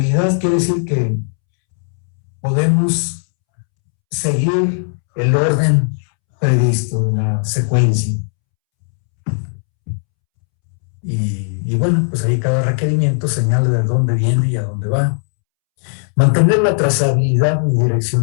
quiere decir que podemos seguir el orden previsto de la secuencia. Y bueno, pues ahí cada requerimiento señala de dónde viene y a dónde va. Mantener la trazabilidad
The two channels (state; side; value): silent; right; 69 dB below the other